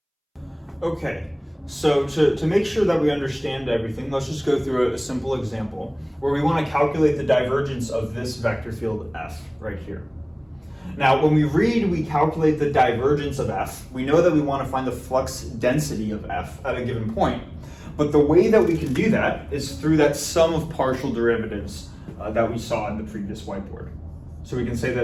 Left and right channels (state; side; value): identical; both; correlation 1.00